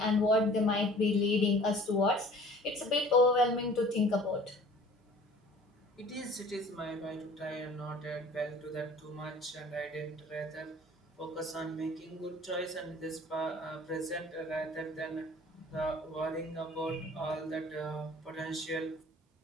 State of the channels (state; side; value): normal; both; correlation 0.49